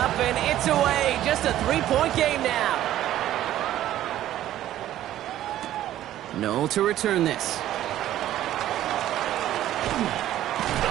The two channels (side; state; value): left; quieter; 13.0 dB